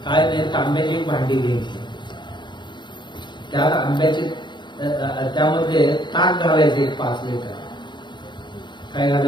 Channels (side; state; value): right; late; 0.22 ms